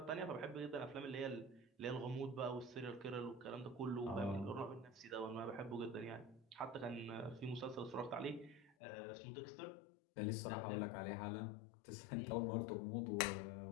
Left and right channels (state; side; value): drops out; right; at 8.8 s